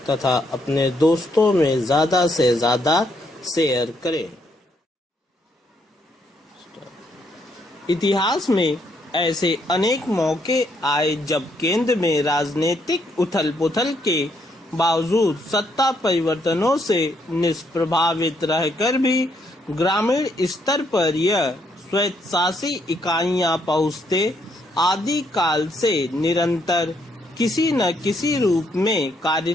तथा अपने दोस्तों में ज़्यादा से ज़्यादा शेयर करें। इतिहास में ऐसे अनेक मौके आए जब केंद्र में राजनीतिक उथल-पुथल के बावजूद सत्ता परिवर्तनों से निष्प्रभावित रहकर भी ग्रामीण स्तर पर यह स्वायत्तशासी इकाइयां पहुंचते आदि काल से निरंतर किसी न किसी रूप में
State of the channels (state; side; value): normal; both; correlation 0.73